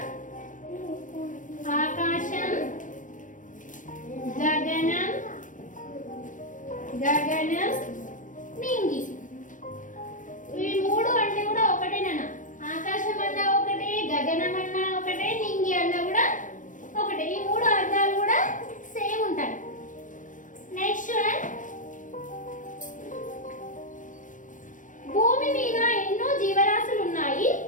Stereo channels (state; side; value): late; right; 0.38 ms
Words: ఆకాశం, గగనం, గగనం, నింగి. ఈ మూడు అంటే కూడా ఒకటేనా? ఆకాశం అన్నా ఒకటే, గగనం అన్నా ఒకటే, నింగి అన్నా కూడా ఒకటే. ఈ మూడు అర్థాలు కూడా సేమ్ ఉంటాయి. నెక్స్ట్ వన్, భూమి మీద ఎన్నో జీవరాశులు ఉన్నాయి,